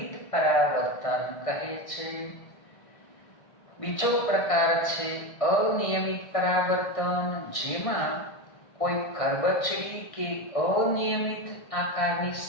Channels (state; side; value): late; right; 1.6 ms